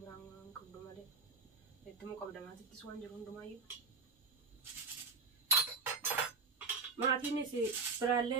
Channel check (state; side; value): quieter; left; 4.3 dB